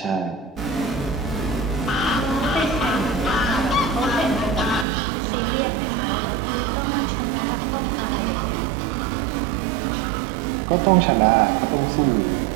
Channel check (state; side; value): drops out; left; at 4.9 s